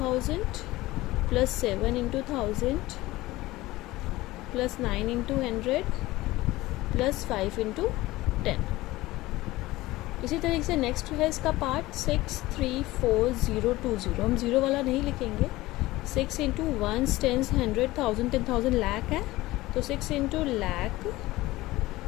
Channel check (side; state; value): right; quieter; 18.4 dB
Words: + 7 × 1000 + 9 × 100 + 5 × 10। इसी तरीके से नेक्स्ट है इसका पार्ट 634020। हम 0 वाला नहीं लिखेंगे। 6 × 1s, 10s, 100, 1000, 10,000 लाख है, तो 6 × लाख,